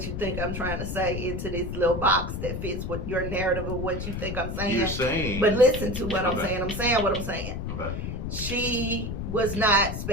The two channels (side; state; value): left; noise; rumble, 4 dB below the sound